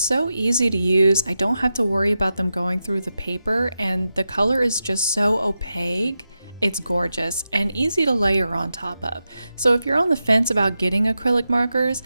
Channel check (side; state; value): both; inverted; correlation -0.90